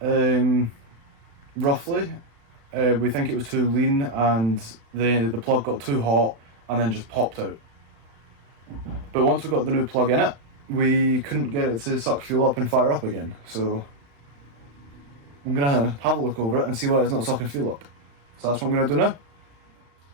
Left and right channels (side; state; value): left; late; 36 ms